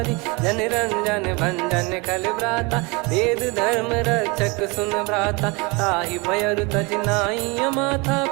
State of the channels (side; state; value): left; quieter; 27.7 dB